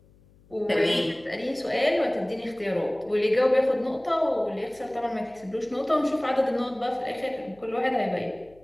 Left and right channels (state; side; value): noise; left; hum, 28 dB below the sound